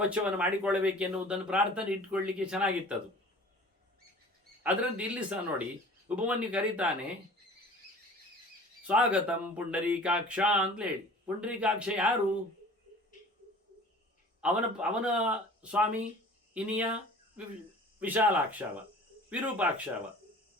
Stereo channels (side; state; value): both; normal; correlation 0.45